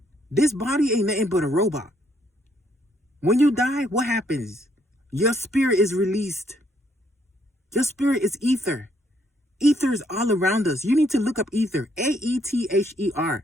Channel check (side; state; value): both; normal; correlation 0.71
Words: This body ain't nothing but a robot. When you die, what happens? Your spirit is released. Your spirit is ether. Ether is all around us. You need to look up ether. A-E-T-H-E-R.